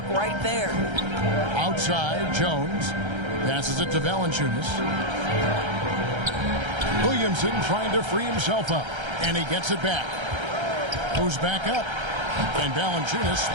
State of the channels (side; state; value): left; late; 1.3 ms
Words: right there. Outside, Jones passes it to Valanciunas. Williamson trying to free himself up, and he gets it back. Goes back up, and Valanciunas